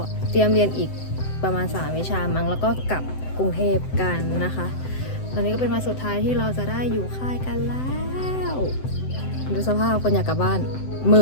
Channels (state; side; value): late; right; 7.8 ms